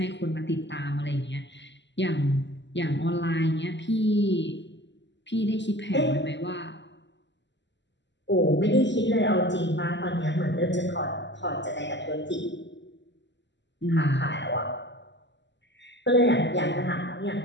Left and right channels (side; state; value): right; late; 0.52 ms